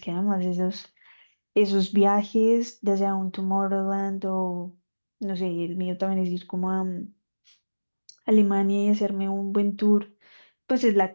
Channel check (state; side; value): inverted; both; correlation -1.00